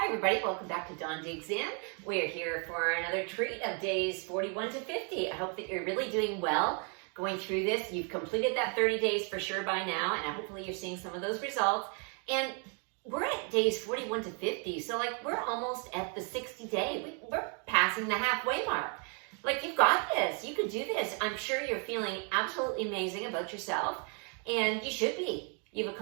everybody, welcome back to Dawn Digs In. We're here for another treat of days 41 to 50. I hope that you're really doing well going through this. You've completed that 30 days for sure by now, and hopefully you're seeing some of those results. And we're at days 41 to 50, so we're almost at the 60 day. We're passing the halfway mark. You've got this, you can do this. I'm sure you're feeling absolutely amazing about yourself, and you should be. You've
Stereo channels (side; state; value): left; quieter; 38.3 dB